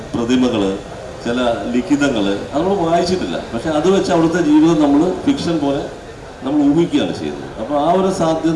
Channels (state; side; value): identical; both; correlation 1.00